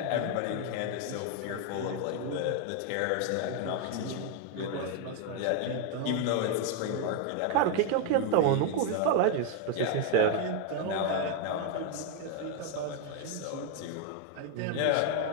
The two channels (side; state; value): both; different; correlation 0.00